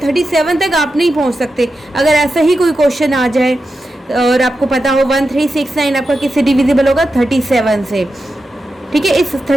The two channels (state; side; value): normal; both; correlation 0.90